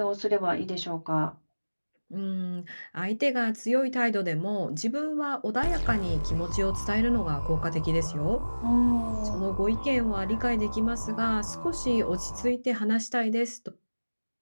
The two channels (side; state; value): both; inverted; correlation -1.00